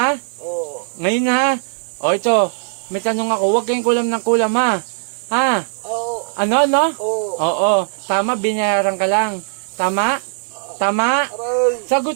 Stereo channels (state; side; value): silent; left; digital silence